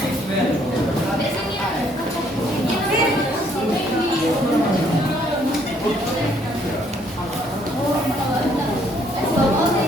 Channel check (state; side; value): normal; both; correlation 0.66